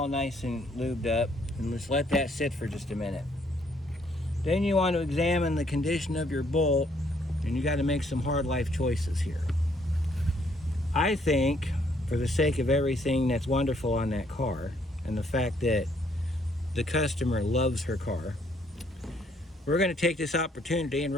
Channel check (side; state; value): both; normal; correlation 0.68